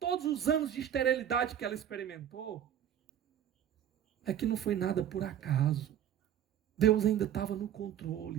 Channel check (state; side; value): quieter; left; 10.1 dB